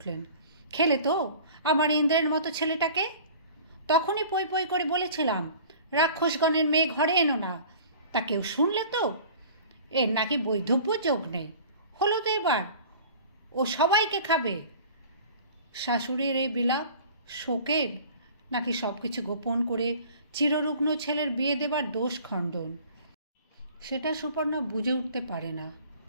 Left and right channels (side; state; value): both; inverted; correlation -0.45